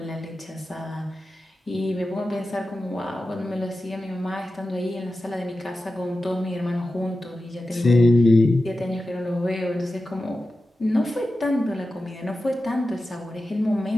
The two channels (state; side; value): normal; both; correlation 0.93